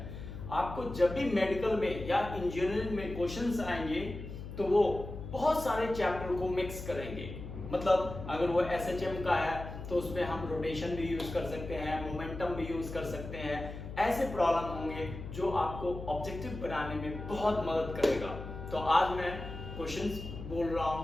आपको जब भी मेडिकल में या इंजीनियरिंग में क्वेश्चंस आएंगे तो वो बहुत सारे चैप्टर को मिक्स करेंगे। मतलब अगर वो एसएचएम का है तो उसमें हम रोटेशन भी यूज कर सकते हैं, मोमेंटम भी यूज कर सकते हैं। ऐसे प्रॉब्लम होंगे जो आपको ऑब्जेक्टिव बनाने में बहुत मदद करेगा। तो आज मैं क्वेश्चंस बोल रहा हूं,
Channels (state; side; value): noise; left; hum, 9 dB below the sound